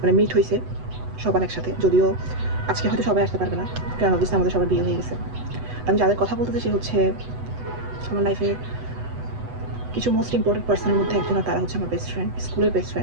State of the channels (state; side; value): late; left; 8.0 ms